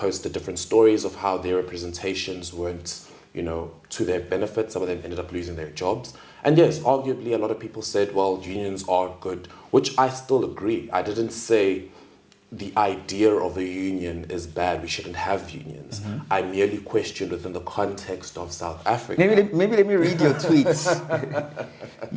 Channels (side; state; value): both; identical; correlation 1.00